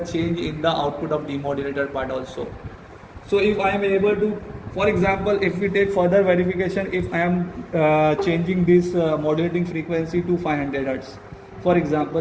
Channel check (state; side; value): identical; both; correlation 1.00